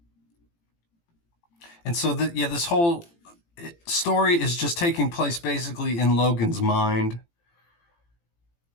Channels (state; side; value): late; right; 18 ms